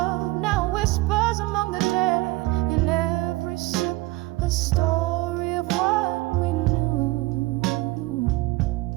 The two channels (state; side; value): quieter; left; 20.5 dB